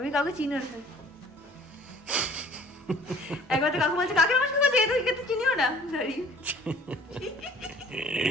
আমি কাউকে চিনি না। একবার তো কাকু বলছে কাকে নমস্কার করছে, এত চিনিও না। সরি।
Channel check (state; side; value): normal; both; correlation 0.52